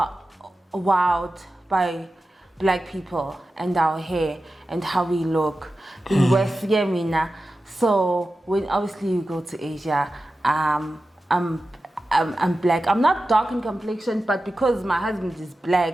wowed by black people and our hair and how we look. In West Yemena. So when obviously you go to Asia, I'm black. I'm not dark in complexion, but because my husband is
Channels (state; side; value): normal; both; correlation 0.93